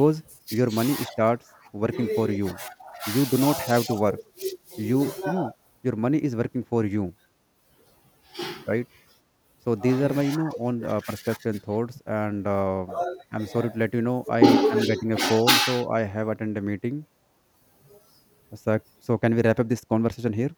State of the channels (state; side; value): identical; both; correlation 1.00